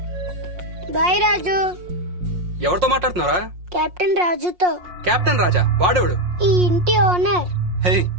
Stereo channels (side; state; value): left; late; 5.6 ms